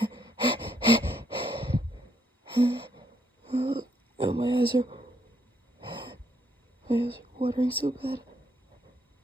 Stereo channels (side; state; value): both; normal; correlation 0.73